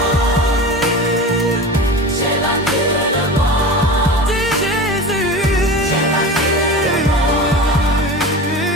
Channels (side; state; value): both; normal; correlation 0.31